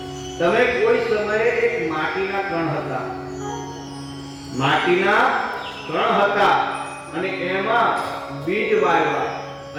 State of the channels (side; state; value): both; identical; correlation 1.00